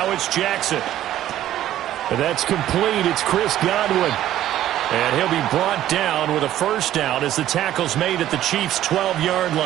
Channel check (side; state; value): left; quieter; 12.8 dB